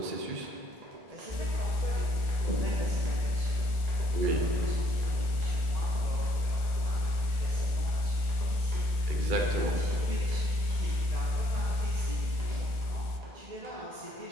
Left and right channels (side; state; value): left; late; 1.4 ms